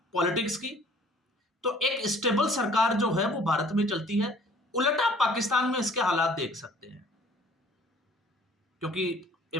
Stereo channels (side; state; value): both; normal; correlation 0.54